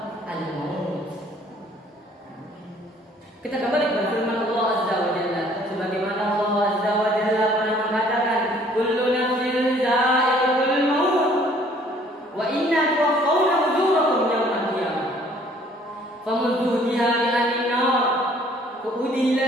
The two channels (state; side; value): normal; both; correlation 0.58